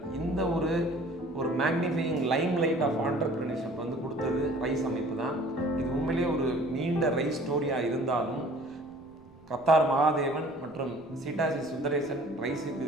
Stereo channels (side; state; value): right; noise; rumble, 27 dB below the sound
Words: இந்த ஒரு magnifying limelight of entrepreneurship வந்து கொடுத்தது ரைஸ் அமைப்பு தான். இது உண்மையிலேயே ஒரு நீண்ட ரைஸ் ஸ்டோரியாக இருந்தாலும் கத்தார் மகாதேவன் மற்றும் சீட்டாசி சுந்தரேசன் ரைஸுக்கு